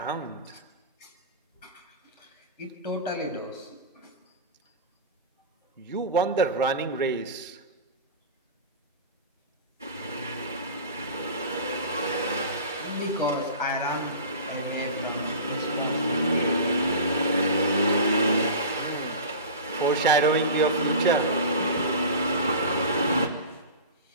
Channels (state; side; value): inverted; both; correlation -0.33